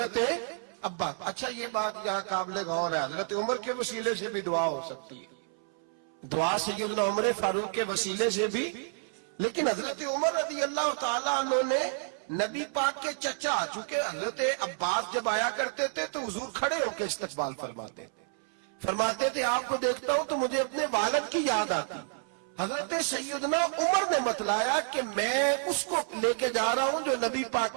ابا۔ اچھا یہ بات یہاں قابل غور ہے، حضرت عمر کے وسیلے سے بھی دعا ہو سکتی ہے، دعا سیدنا عمر فاروق کے وسیلے سے بھی، لیکن حضرت عمر رضی اللہ تعالیٰ عنہ نے نبی پاک کے چچا، چونکہ حضرت عباس جب آیا کرتے تھے تو حضور کھڑے ہو کے استقبال فرماتے تھے آپ کو دیکھتا ہوں تو مجھے اپنے والد کی یاد آتی۔ حضرت سیدنا عمر نے بتلایا کہ میں اس کو لے کے جا رہا ہوں جو نبی پاک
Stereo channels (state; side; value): silent; left; 58 dB below the other